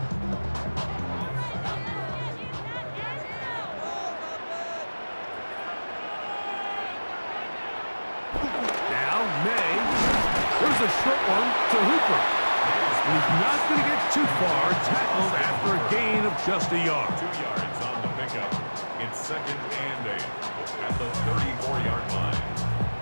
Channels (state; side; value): inverted; both; correlation -1.00